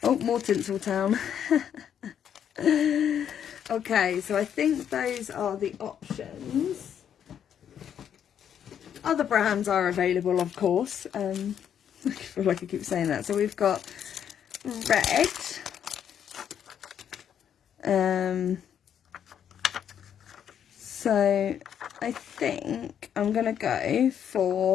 Oh, more Tinseltown. Okay, so I think those are the options. Other brands are available, of course. I feel like I keep saying that. So we've got red. So I think I'm going to go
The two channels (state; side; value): quieter; right; 8.9 dB